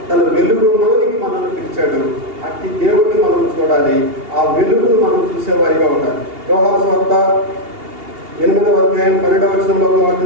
తన వెలుగులోనికి మనల్ని పిలిచాడు. అట్టి దేవుడిని మనం చూడాలి, ఆ వెలుగును మనం చూసేవారిగా ఉండాలి. యోహాను సువార్త 8వ అధ్యాయం 12వ వచనంలో ఒక మాట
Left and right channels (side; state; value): left; late; 2.8 ms